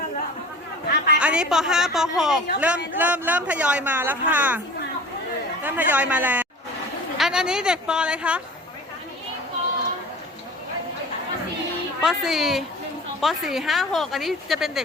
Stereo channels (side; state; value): both; normal; correlation 0.40